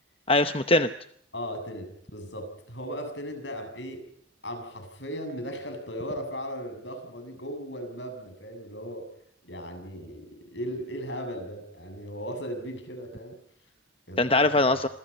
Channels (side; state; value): both; normal; correlation 0.12